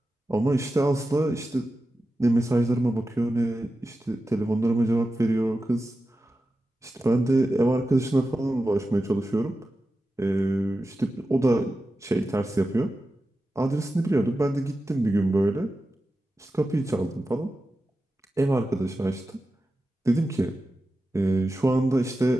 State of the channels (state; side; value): normal; both; correlation 0.92